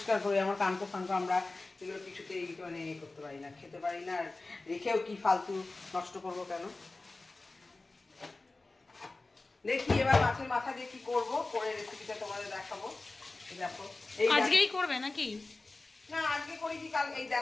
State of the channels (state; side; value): quieter; right; 3.3 dB